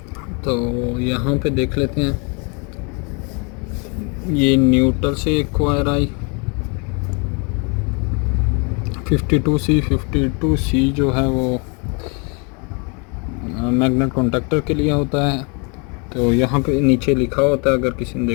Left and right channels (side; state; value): right; quieter; 33.5 dB